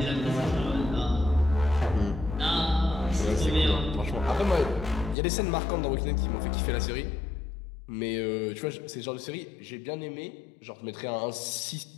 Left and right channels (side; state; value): right; drops out; at 5.2 s